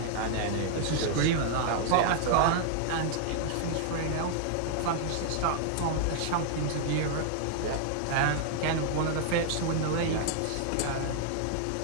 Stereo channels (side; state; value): both; different; correlation -0.01